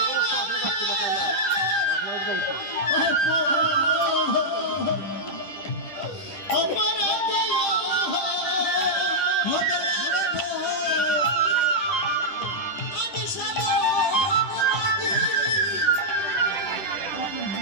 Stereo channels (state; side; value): late; right; 10 ms